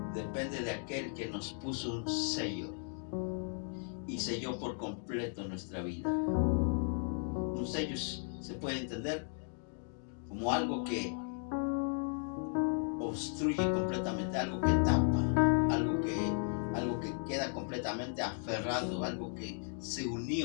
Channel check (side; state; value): right; silent; 54 dB below the other